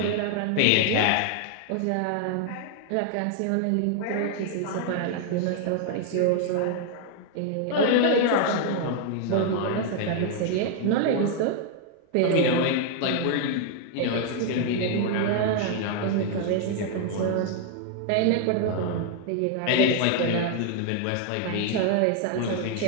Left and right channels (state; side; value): different; both; correlation 0.00